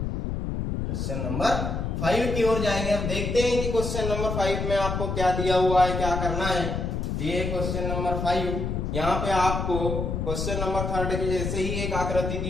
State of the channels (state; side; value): noise; left; rumble, 2 dB below the sound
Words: क्वेश्चन नंबर 5 की ओर जाएंगे। अब देखते हैं कि क्वेश्चन नंबर 5 में आपको क्या दिया हुआ है, क्या करना है। ये क्वेश्चन नंबर 5, यहाँ पे आपको क्वेश्चन नंबर 3 की जैसे ही एक आकृति